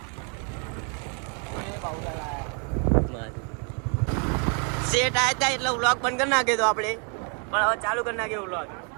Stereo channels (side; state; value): left; quieter; 39.8 dB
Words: સેટ આયા હતા એટલે વ્લોગ બંધ કરી નાખ્યો તો આપણે, પણ હવે ચાલુ કરી નાખ્યો વ્લોગ.